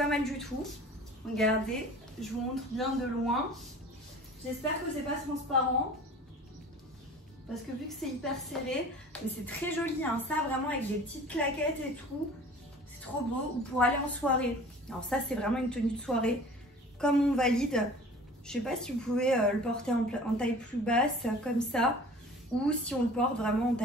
mal du tout. Regardez, je vous montre bien de loin. J'espère que c'est pas transparent. Parce que vu que c'est hyper serré, mais c'est très joli, hein, ça vraiment avec des petites claquettes et tout, trop beau, ou pour aller en soirée. Alors ça, c'est vraiment une tenue de soirée, comme on valide. Je sais pas si vous pouvez le porter en taille plus basse, comme ça, ou si on le porte vraiment en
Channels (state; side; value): normal; both; correlation 0.44